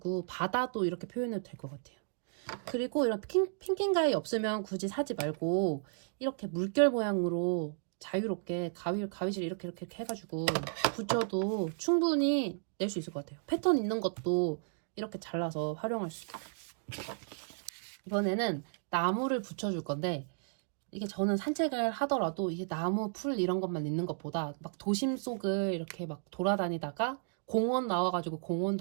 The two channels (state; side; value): silent; left; digital silence